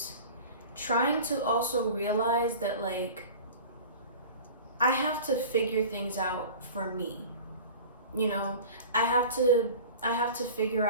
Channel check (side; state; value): both; inverted; correlation -0.38